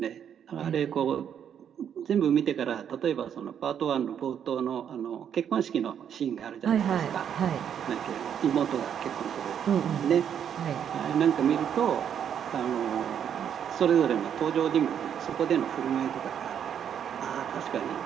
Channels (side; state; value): left; quieter; 8.7 dB